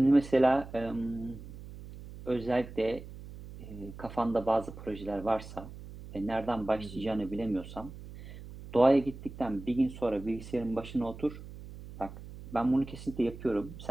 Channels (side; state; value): right; noise; hum, 14 dB below the sound